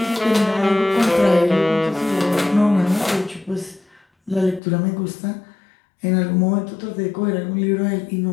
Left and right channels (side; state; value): right; drops out; at 4.6 s